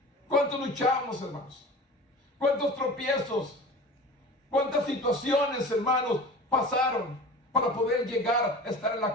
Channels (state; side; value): normal; both; correlation 0.37